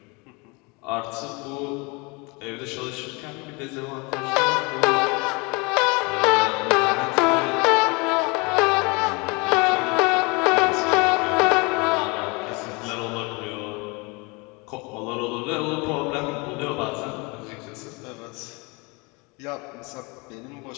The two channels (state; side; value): quieter; right; 28.2 dB